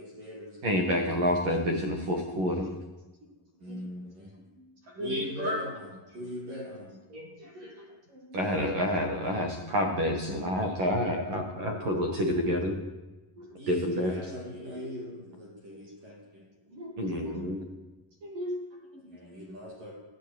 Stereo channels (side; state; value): left; late; 11 ms